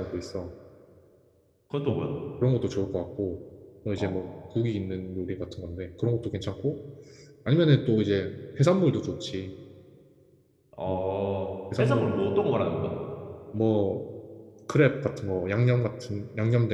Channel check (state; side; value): identical; both; correlation 1.00